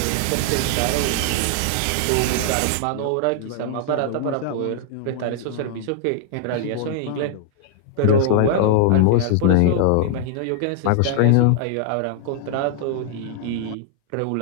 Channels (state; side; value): different; both; correlation -0.01